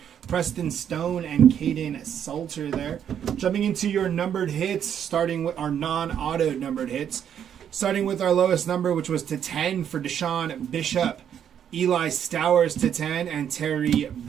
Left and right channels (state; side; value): quieter; left; 9.0 dB